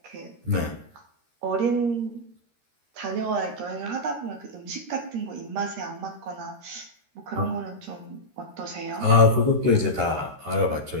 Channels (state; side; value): late; left; 13 ms